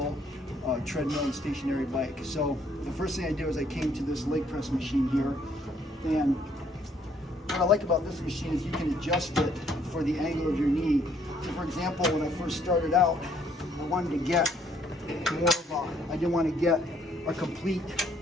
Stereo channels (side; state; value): both; normal; correlation 0.66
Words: treadmill, and stationary bike. So the first thing I did was I came to this leg press machine here, and what I like about this machine is you can adjust it for the angle of your knee. So for example, when I first started out, I wanted to get more of a, I didn't want to get a complete,